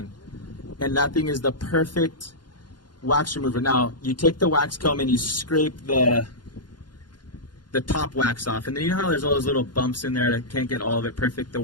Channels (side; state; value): right; late; 0.71 ms